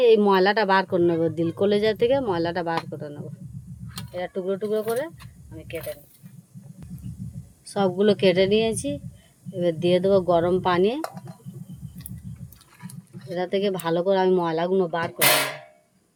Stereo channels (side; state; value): both; identical; correlation 1.00